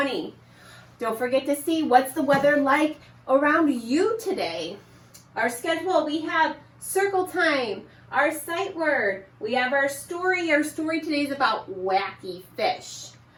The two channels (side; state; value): both; identical; correlation 1.00